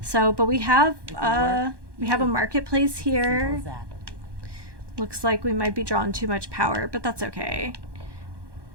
So, but we have a marketplace here. Looks like we might be drawing too much power, but that's okay.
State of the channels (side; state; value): left; late; 1.2 ms